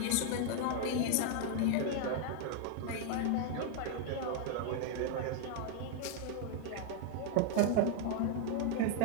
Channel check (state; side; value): different; both; correlation -0.01